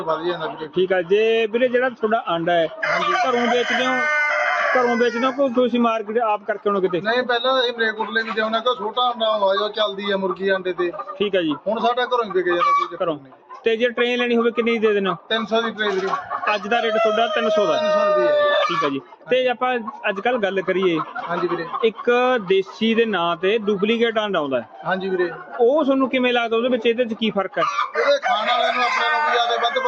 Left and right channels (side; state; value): both; identical; correlation 1.00